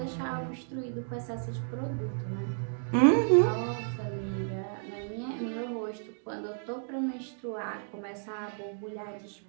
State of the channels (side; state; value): left; silent; digital silence